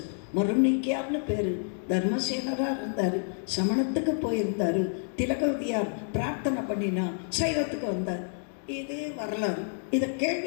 மருநீக்கியார்னு பேர், தர்மசேனராக இருந்தார், சமணத்துக்கு போயிருந்தார். திலகவதியார் பிரார்த்தனை பண்ணினா சைவத்துக்கு வந்தார். இது வரலாறு, இதை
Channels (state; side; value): silent; right; digital silence